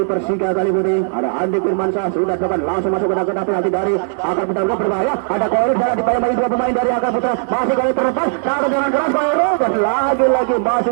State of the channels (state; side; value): silent; left; digital silence